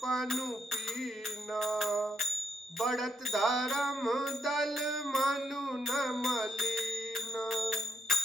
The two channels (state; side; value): normal; both; correlation 0.77